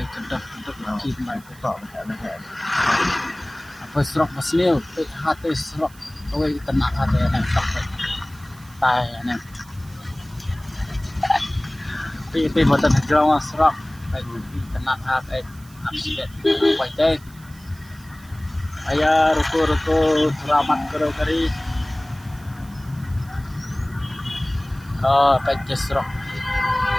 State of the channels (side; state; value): right; noise; hiss, 24 dB below the sound